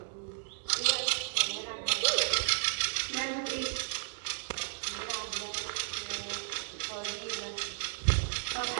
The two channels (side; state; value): left; silent; digital silence